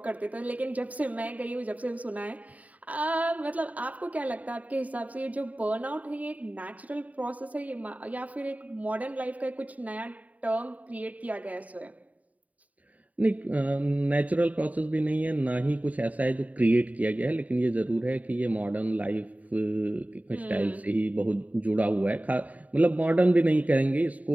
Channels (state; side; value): late; left; 0.071 ms